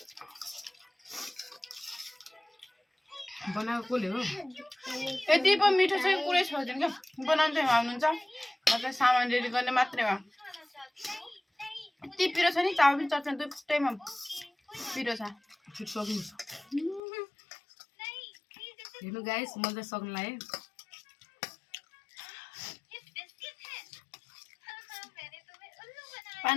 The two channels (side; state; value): right; drops out; at 17.0 s